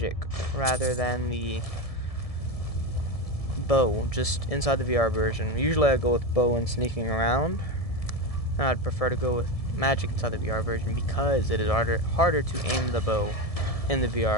rather than the bow, just inside the VR version. Usually I go with bow and sneaking around. And I'd prefer to go with magic inside the VR version because it is harder to aim the bow in the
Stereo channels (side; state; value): right; late; 1.7 ms